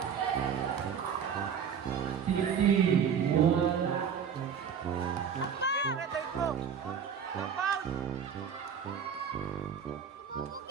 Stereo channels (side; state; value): left; quieter; 7.4 dB